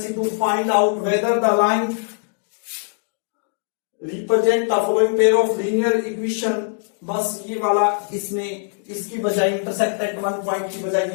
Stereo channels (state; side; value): silent; right; digital silence